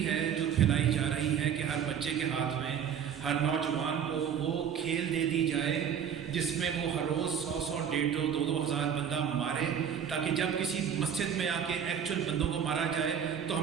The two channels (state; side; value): quieter; left; 8.1 dB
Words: ہے جو پھیلائی جا رہی ہے کہ ہر بچے کے ہاتھ میں، ہر نوجوان کو وہ کھیل دے دی جائے جس میں وہ ہر روز 100 150 2 ہزار بندہ مارے، تاکہ جب کسی مسجد میں آ کے ایکچوئل بندوں کو مارا جائے تو